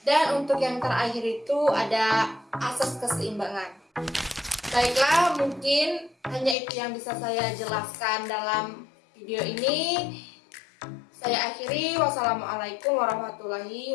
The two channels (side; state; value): right; drops out; at 6.6 s